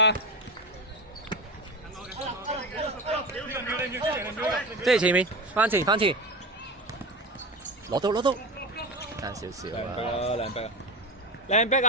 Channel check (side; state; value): both; normal; correlation 0.25